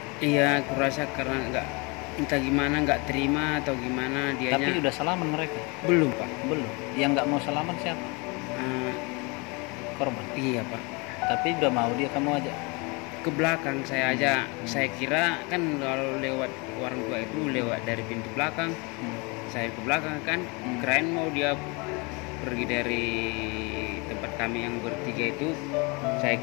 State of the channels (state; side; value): quieter; right; 28.9 dB